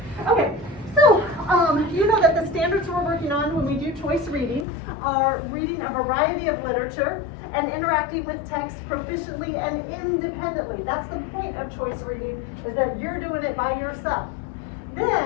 Okay, so you know that the standards we're working on when we do choice reading are reading a variety of literature and interacting with text proficiently and independently. That's the point of choice reading, is that you're doing it by yourself.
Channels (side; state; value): right; drops out; at 4.7 s